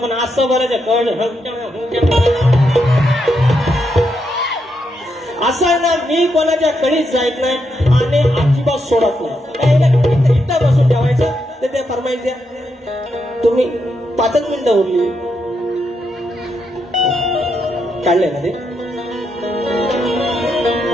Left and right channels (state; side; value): normal; both; correlation 0.81